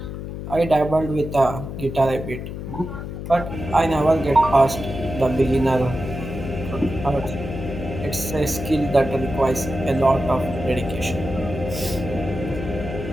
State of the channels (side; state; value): left; noise; hum, 8 dB below the sound